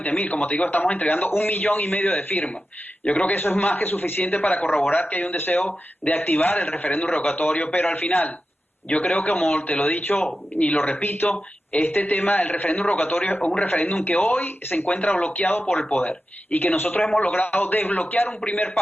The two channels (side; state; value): both; normal; correlation 0.92